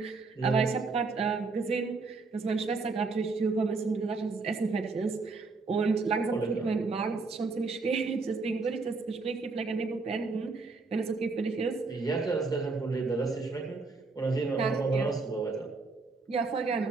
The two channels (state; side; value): quieter; left; 4.0 dB